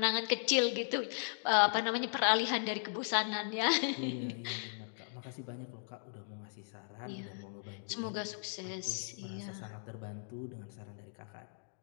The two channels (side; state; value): right; silent; digital silence